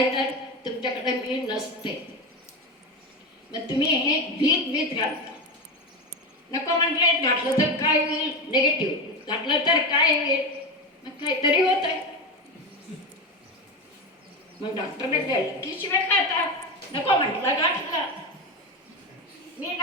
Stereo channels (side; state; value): both; normal; correlation 0.19